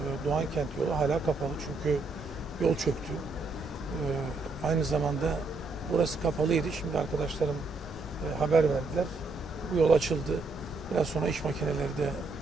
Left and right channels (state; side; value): quieter; left; 3.6 dB